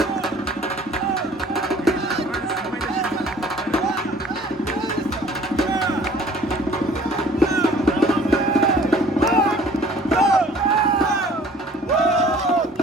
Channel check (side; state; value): both; normal; correlation 0.52